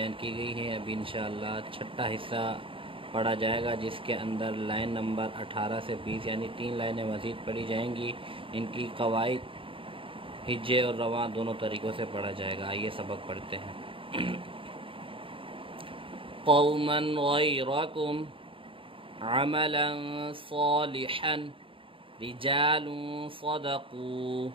کی گئی ہیں۔ ابھی انشاءاللہ چھٹا حصہ پڑھا جائے گا، جس کے اندر لائن نمبر 18 سے 20 یعنی 3 لائنیں مزید پڑھی جائیں گی۔ ان کی قواعد ہجے اور رواں دونوں طریقوں سے پڑھا جائے گا۔ آئیے سبق پڑھتے ہیں۔ قوما غیرکم عملا صالحا رجال صدقوا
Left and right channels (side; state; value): left; late; 0.25 ms